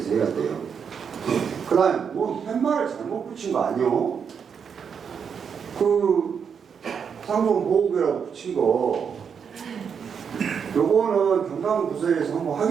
해야 돼요. 그 다음에 뭐 팻말을 잘못 붙인 거 아니요? 그 상종 보호구역이라고 붙인 거 요거는 경남부서에서 한번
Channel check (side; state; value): left; quieter; 6.9 dB